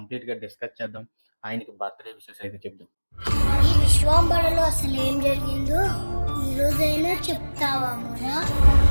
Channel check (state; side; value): inverted; both; correlation -1.00